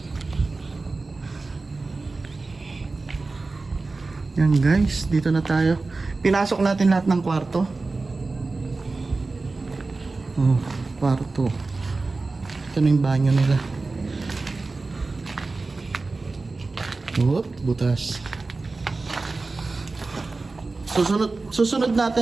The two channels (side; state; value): left; quieter; 3.6 dB